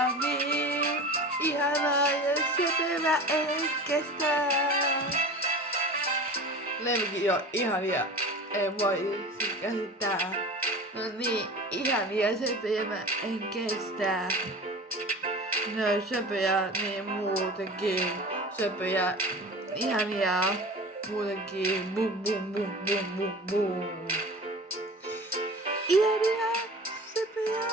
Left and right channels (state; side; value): normal; both; correlation 0.36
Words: niin. Ihanaa ja sepevä en kestä. Lemmikit on ihania, ei voi siis käsittää. No niin, ihania sepevä en kestä. Ne on söpöjä niin muutenkin. Söpöjä, ihania muutenkin. Bum bum bum bum bum bum. Ihania, söpöjä,